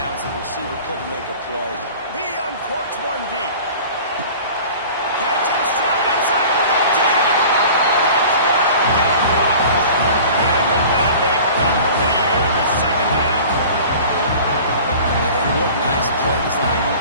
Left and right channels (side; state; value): both; inverted; correlation -0.42